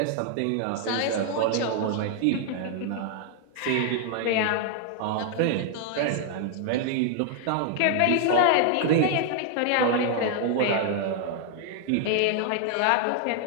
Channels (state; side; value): different; both; correlation 0.00